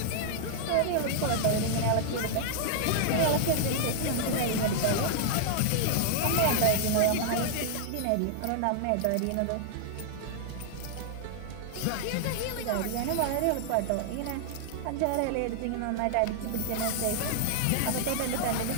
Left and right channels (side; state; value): both; different; correlation -0.01